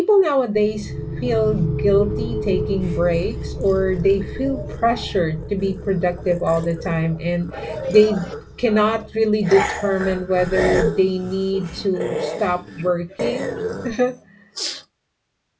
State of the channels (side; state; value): both; identical; correlation 1.00